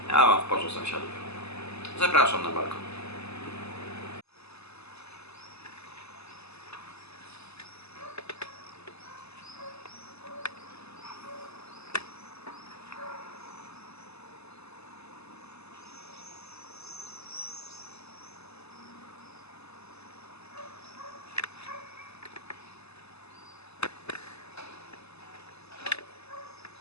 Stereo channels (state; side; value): late; right; 0.79 ms